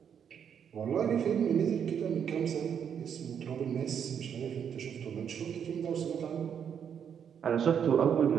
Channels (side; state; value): left; quieter; 8.0 dB